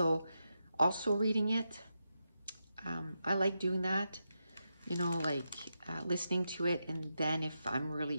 reading it. I like doing that, you know, like listening to it, and then if I'm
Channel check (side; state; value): both; inverted; correlation -0.87